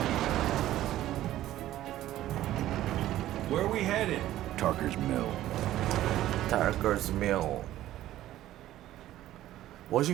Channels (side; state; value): left; quieter; 14.0 dB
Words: Where are we headed? Tarker's Mill. Tarker's Mill.